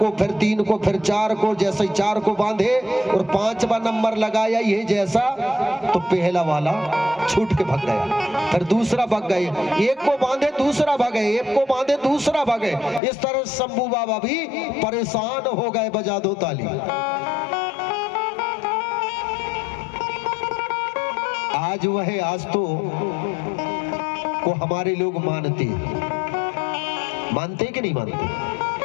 फिर तीन को, फिर चार को। जैसे ही चार को बांधे और 5वां नंबर लगाया ये जैसा, तो पहला वाला छूट के भाग गया, फिर दूसरा भाग गए। एक को बांधे दूसरा भागे, एक को बांधे दूसरा भागे। इस तरह शंभू बाबा भी परेशान हो गए। बजा दो ताली। आज वह आस्तों को हमारे लोग मानते कि नहीं मानते?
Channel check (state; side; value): drops out; right; at 13.0 s